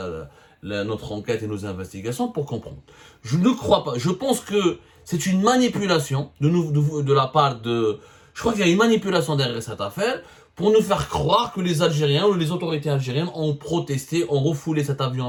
notre enquête et nos investigations pour comprendre. Je ne crois pas. Je pense que c'est une manipulation de la part de... Je crois qu'il y a une manipulation derrière cette affaire pour nous faire croire que les Algériens ou les autorités algériennes ont protesté, ont refoulé cet avion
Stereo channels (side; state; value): both; identical; correlation 1.00